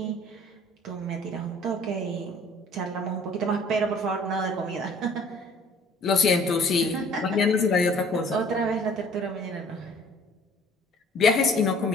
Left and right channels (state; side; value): normal; both; correlation 0.53